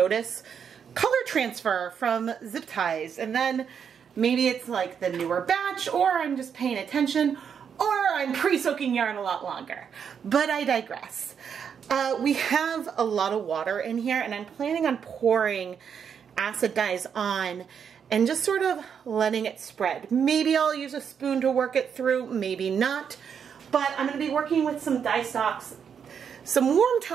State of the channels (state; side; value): quieter; left; 7.3 dB